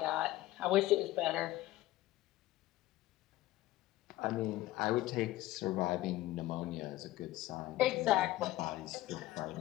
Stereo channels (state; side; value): quieter; right; 16.2 dB